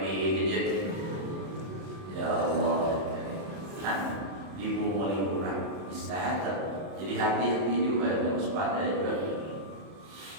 gadget? Ya Allah, kan dibumuli orang bisa jadi hati-hati juga, harus waspada juga.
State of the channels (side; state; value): left; late; 31 ms